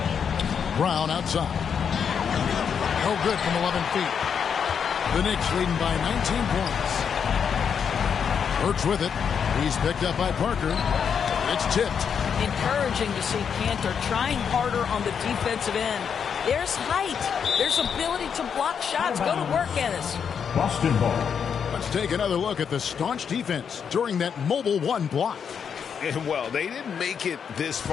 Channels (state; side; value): quieter; right; 7.1 dB